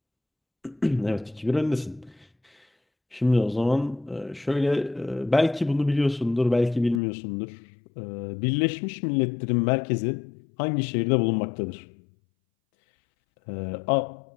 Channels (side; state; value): right; drops out; at 7.0 s